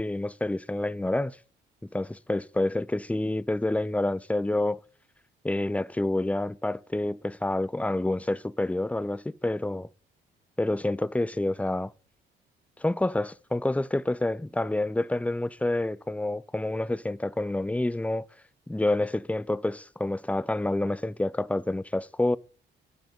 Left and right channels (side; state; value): both; normal; correlation 0.97